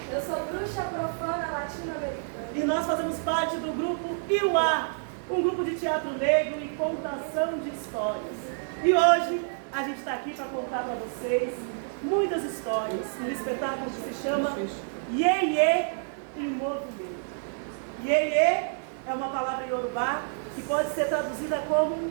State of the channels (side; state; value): left; silent; 56 dB below the other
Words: Eu sou bruxa profana latino-americana. E nós fazemos parte do grupo Iuá, um grupo de teatro negro e contação de histórias. E hoje a gente está aqui para contar para vocês muitas histórias, um espetáculo que se chama Iê-Iê em Movimento. Iê-Iê é uma palavra iorubá que pode ser traduzida como